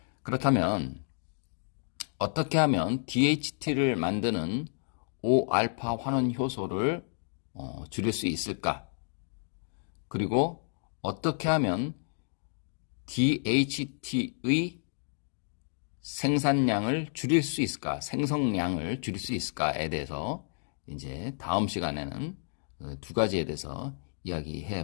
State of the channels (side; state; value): right; silent; digital silence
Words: 그렇다면 어떻게 하면 DHT를 만드는 5알파 환원 효소를 줄일 수 있을까? 그리고 어떻게 하면 DHT의 생산량을 줄일 수 있을까? 생성량을 줄일 수 있을까에 대해서 이제 다음 시간에는 두 가지에 대해서